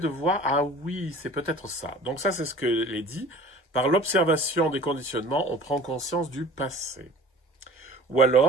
voir, ah oui, c'est peut-être ça. Donc ça, c'est ce que l'est dit. Par l'observation des conditionnements, on prend conscience du passé. Ou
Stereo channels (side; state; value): both; normal; correlation 0.45